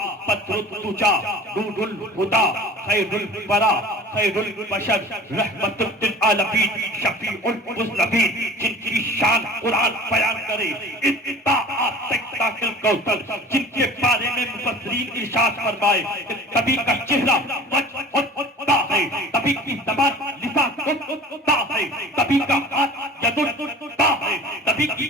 بدر الدجیٰ نور الہدیٰ خیر الورا خیر البشر رحمت للعالمین شفیع المذنبین، جن کی شان قرآن بیان کرے الکوثر، جن کے بارے میں مفسرین ارشاد فرمائے کہ کبھی کا چہرہ وجہ ہے، کبھی کی زبان لسان ہے، کبھی کا ہاتھ ید ہے، کبھی کی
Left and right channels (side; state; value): both; normal; correlation 0.44